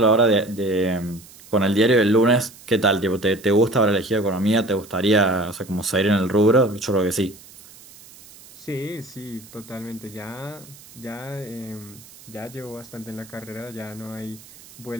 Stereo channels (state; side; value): noise; right; hiss, 21 dB below the sound